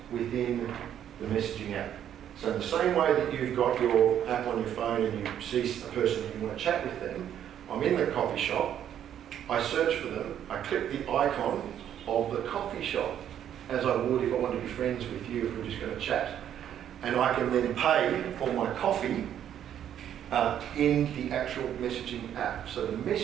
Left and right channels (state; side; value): quieter; left; 10.1 dB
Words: within the messaging app. So in the same way that you've got your app on your phone and you see a person and you want to chat with them, I'm in the coffee shop, I search for them, I click the icon of the coffee shop as I would if I wanted to be friends with you if we're just going to chat. And I can then pay for my coffee in the actual messaging app. So the